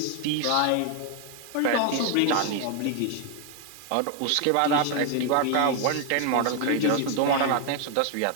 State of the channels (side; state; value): both; different; correlation 0.00